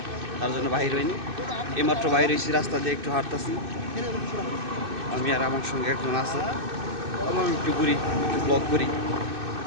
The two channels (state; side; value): late; left; 2.6 ms